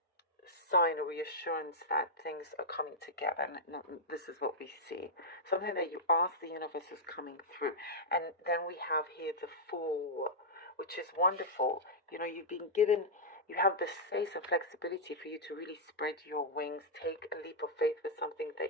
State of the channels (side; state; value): both; normal; correlation -0.07